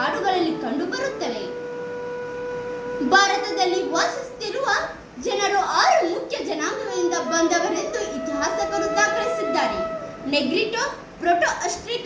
ಕಂಡುಬರುತ್ತವೆ. ಭಾರತದಲ್ಲಿ ವಾಸಿಸುತ್ತಿರುವ ಜನರು 6 ಮುಖ್ಯ ಜನಾಂಗಗಳಿಂದ ಬಂದವರೆಂದು ಇತಿಹಾಸಕರು ದಾಖಲಿಸಿದ್ದಾರೆ. ನೆಗ್ರಿಟೋ,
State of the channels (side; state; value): both; identical; correlation 1.00